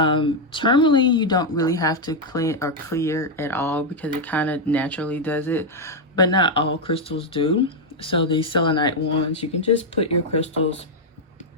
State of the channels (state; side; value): normal; both; correlation 0.01